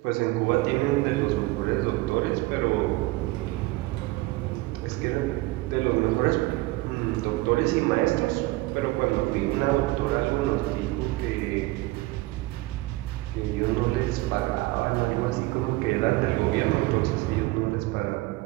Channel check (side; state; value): left; quieter; 20.4 dB